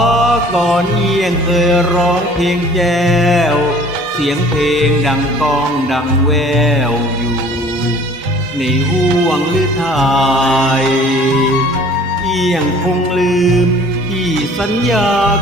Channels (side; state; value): both; normal; correlation 0.50